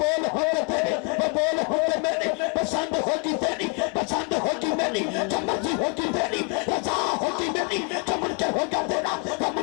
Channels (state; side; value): quieter; right; 31.9 dB